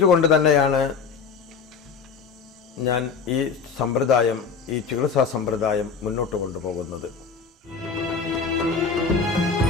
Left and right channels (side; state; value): right; quieter; 5.6 dB